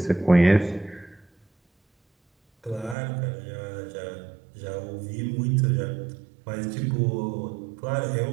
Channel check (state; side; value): drops out; left; at 3.0 s